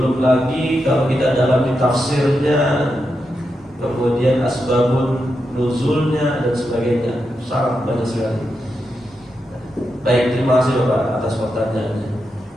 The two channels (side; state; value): both; normal; correlation 0.86